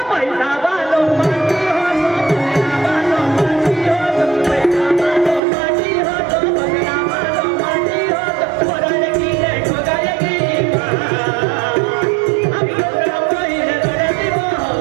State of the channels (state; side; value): drops out; left; at 5.4 s